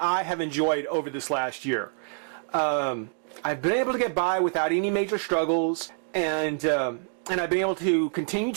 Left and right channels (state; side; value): silent; left; digital silence